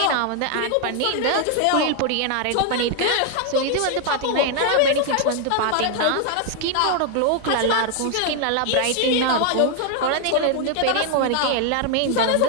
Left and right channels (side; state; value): both; different; correlation 0.00